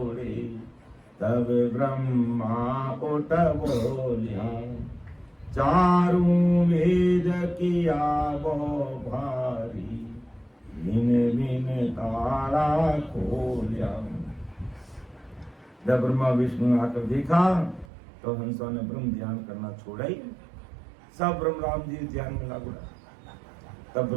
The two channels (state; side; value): drops out; left; at 17.9 s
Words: तब ब्रह्मा उठ बोलिया, चारों वेद किया वो भारी, बिन बिन तारा खोलिया। जब ब्रह्मा विष्णु ने आकर देखा तो हंसों ने ब्रह्म ध्यान करना छोड़ा ही, सब ब्रह्म राम जी ध्यान में लागू रहा। तब